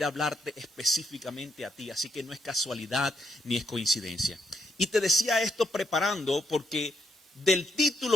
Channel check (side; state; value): both; normal; correlation 0.76